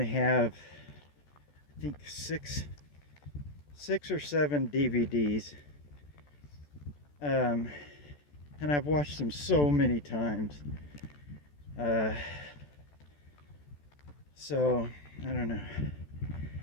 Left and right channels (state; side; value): late; right; 14 ms